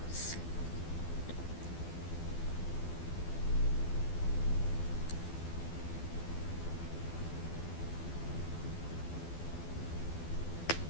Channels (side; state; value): right; late; 12 ms